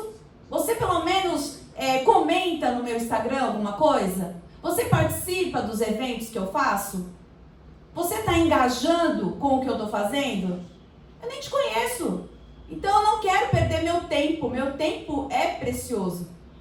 Você pelo menos comenta no meu Instagram alguma coisa? Você participa dos eventos que eu faço? Você está engajando com o que eu estou fazendo? Eu nem te conheço. Então eu não quero perder meu tempo é precioso.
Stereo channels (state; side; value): identical; both; correlation 1.00